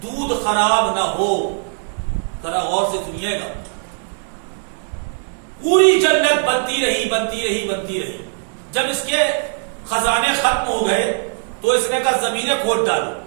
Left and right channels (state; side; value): silent; left; digital silence